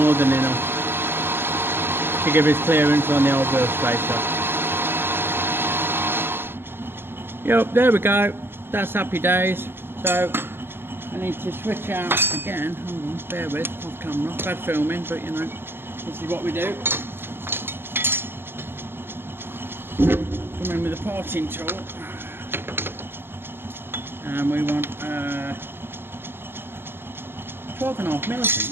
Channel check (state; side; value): late; left; 0.11 ms